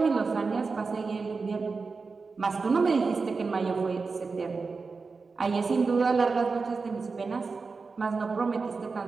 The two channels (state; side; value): quieter; left; 4.4 dB